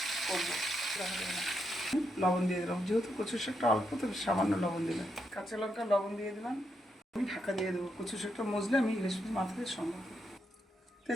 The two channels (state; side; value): normal; both; correlation 0.81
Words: করবো। লবণ দিয়ে দিলাম, যেহেতু কচুর শাকটা অল্প তো সামান্য লবণ দিলাম। কাঁচা লঙ্কা লবণ দিয়ে দিলাম। আমি ঢাকা দিয়ে দেবো। কচুর শাকটা মজলে আমি ইলিশ মাথা দিয়ে সম্ভব।